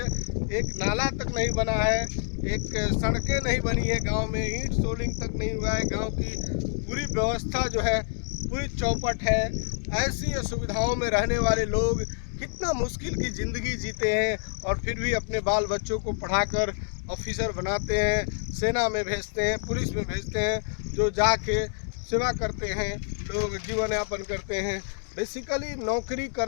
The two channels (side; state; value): right; silent; digital silence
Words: एक नाला तक नहीं बना है, एक सड़कें नहीं बनी है गांव में, ईंट सोलिंग तक नहीं हुआ है। गांव की पूरी व्यवस्था जो है पूरी चौपट है। ऐसी सुविधाओं में रहने वाले लोग कितना मुश्किल की ज़िंदगी जीते हैं, और फिर भी अपने बाल बच्चों को पढ़ाकर ऑफिसर बनाते हैं, सेना में भेजते हैं, पुलिस में भेजते हैं, जो जाके सेवा करते हैं, लोग जीवन यापन करते हैं। बेसिकली नौकरी